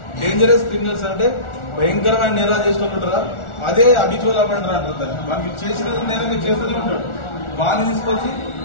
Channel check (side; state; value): right; late; 1.4 ms